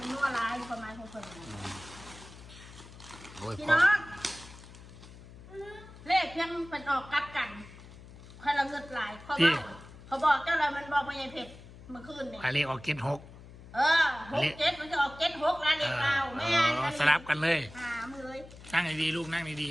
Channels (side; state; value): left; noise; hum, 18 dB below the sound